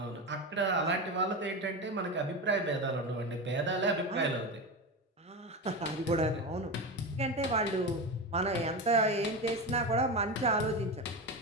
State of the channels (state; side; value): normal; both; correlation 0.21